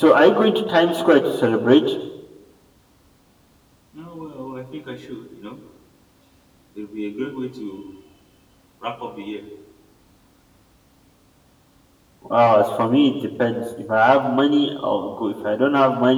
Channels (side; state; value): both; identical; correlation 1.00